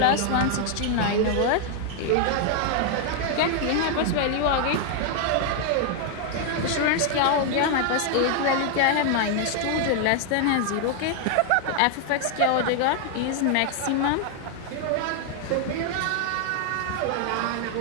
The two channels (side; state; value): both; different; correlation 0.00